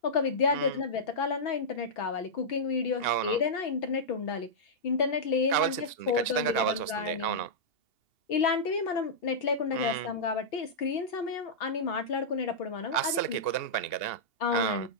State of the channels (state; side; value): late; right; 2.8 ms